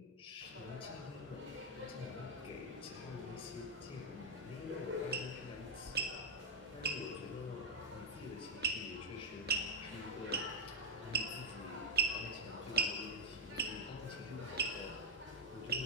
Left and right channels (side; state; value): both; normal; correlation 0.01